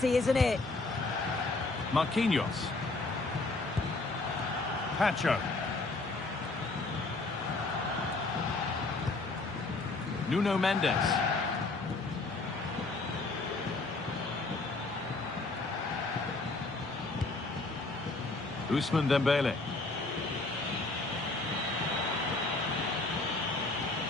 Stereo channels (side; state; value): right; quieter; 3.3 dB